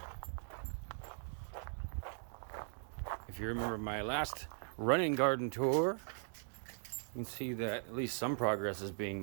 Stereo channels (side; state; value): left; silent; digital silence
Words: If you remember my last running garden tour, you can see that at least some progress is being